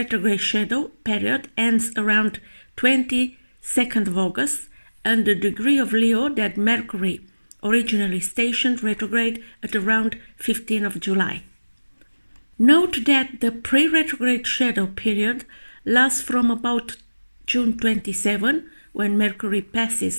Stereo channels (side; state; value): both; inverted; correlation -1.00